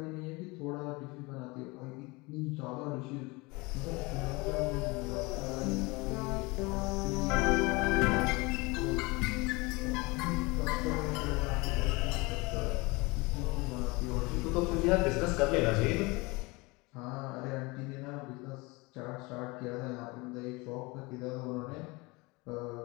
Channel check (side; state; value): right; quieter; 25.1 dB